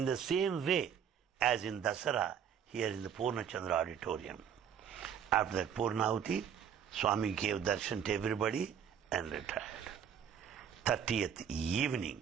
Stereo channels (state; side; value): quieter; left; 8.3 dB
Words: the same way as in Dasara, here in the Purnachandra auditorium. After that Purnahuti, Swami gave darshan to everybody and retired. 30th evening,